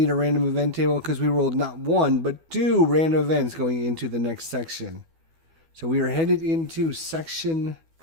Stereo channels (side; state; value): left; late; 12 ms